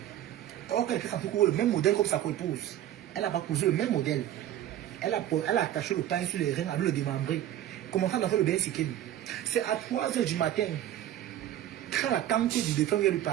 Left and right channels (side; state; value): left; quieter; 12.1 dB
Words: Or, quelqu'un a pris le même modèle comme sa co-épouse. Elle n'a pas posé le même modèle. Elle a attaché le pain sur les reins avec le démembré. Commençant à faire le bain sikine. C'est à 3 h du matin. Quand la tante du défunt vient lui